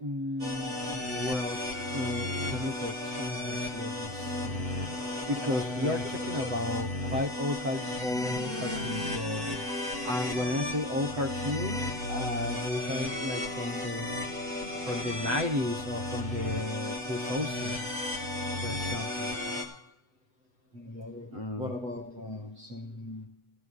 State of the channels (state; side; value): late; left; 7.9 ms